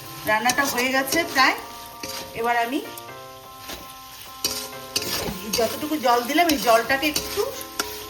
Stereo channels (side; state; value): both; identical; correlation 1.00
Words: রান্নাটা হয়ে গেছে প্রায়। এবার আমি যতটুকু জল দিলাম এই জলটাকে একটু